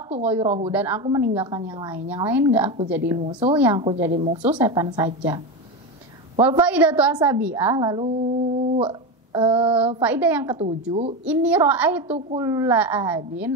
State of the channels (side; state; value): both; normal; correlation 0.17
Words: ghairahu, dan aku meninggalkan yang lain. Yang lain nggak aku jadi musuh, yang aku jadi musuh setan saja. Wal faidatu asabiah, lalu faidah yang ketujuh, ini ra'aitu kulla